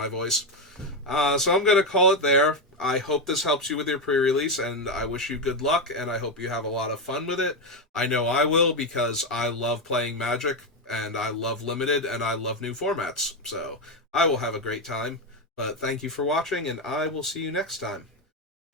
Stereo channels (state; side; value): normal; both; correlation 0.09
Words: voice. So I'm gonna call it there. I hope this helps you with your pre-release, and I wish you good luck, and I hope you have a lot of fun with it. I know I will, because I love playing Magic, and I love Limited, and I love new formats. So I will have a great time. But thank you for watching, and I will see you next time.